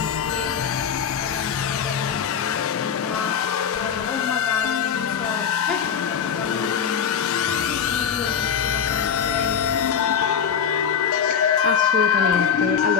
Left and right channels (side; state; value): right; quieter; 7.5 dB